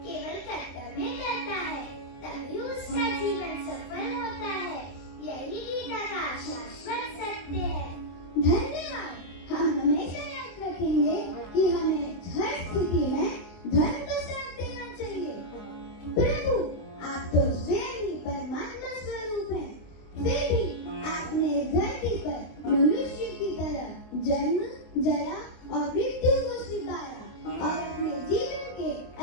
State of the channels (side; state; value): right; late; 23 ms